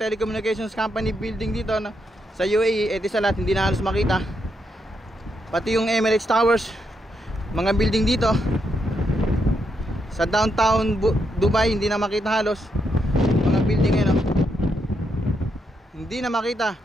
company building dito sa UAE. Etisalat, hindi na halos makita. Pati yung Emirates Towers, mga building dito sa downtown Dubai, hindi na makita halos. Mga building yan, hindi na makita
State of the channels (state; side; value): normal; both; correlation 0.80